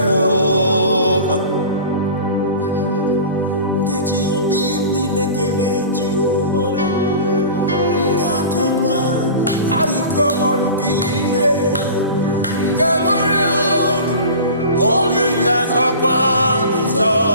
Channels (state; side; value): inverted; both; correlation -0.37